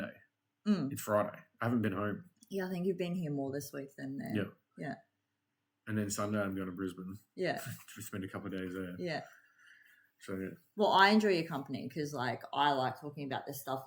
It's Friday. I haven't been home. Yeah, I think you've been here more this week than there. Yeah. And then Sunday I'm going to Brisbane. Yeah. To spend a couple of days there. Yeah. So yeah. Well, I enjoy your company because like I like talking about this stuff.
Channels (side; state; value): both; identical; correlation 1.00